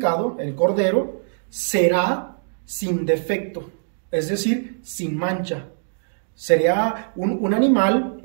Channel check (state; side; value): silent; left; digital silence